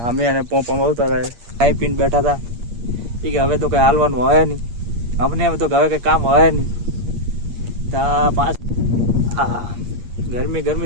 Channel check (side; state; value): left; late; 8.5 ms